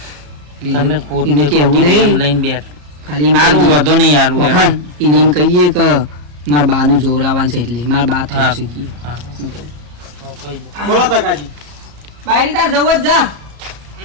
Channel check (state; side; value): late; left; 34 ms